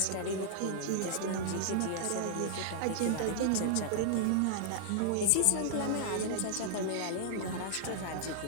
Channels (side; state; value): both; different; correlation -0.01